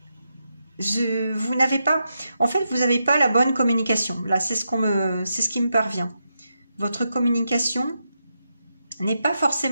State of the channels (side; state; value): both; inverted; correlation -0.85